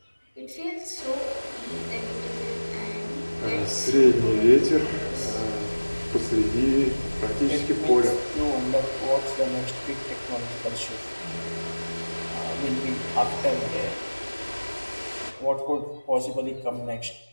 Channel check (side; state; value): both; inverted; correlation -1.00